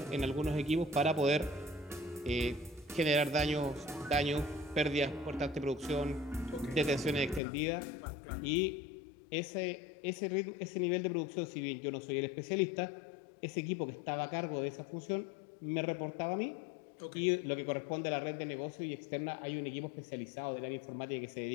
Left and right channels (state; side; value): drops out; right; at 7.4 s